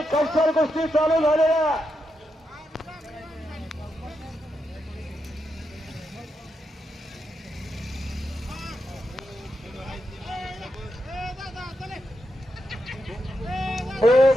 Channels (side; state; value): both; normal; correlation 0.84